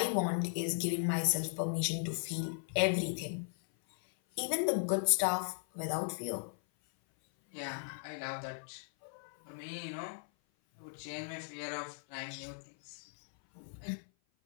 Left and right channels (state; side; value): silent; right; 53 dB below the other